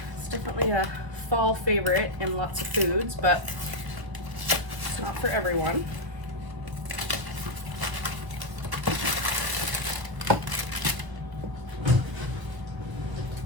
It's definitely a fall favorite in lots of foods, but it's not for everyone.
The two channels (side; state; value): left; late; 1.3 ms